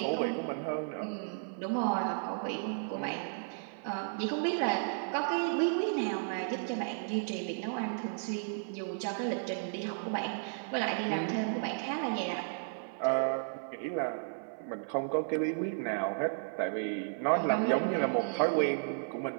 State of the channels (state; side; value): silent; left; 55 dB below the other